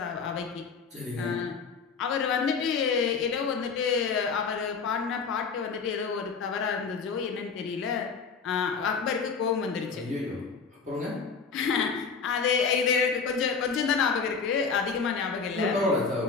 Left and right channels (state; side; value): quieter; right; 5.4 dB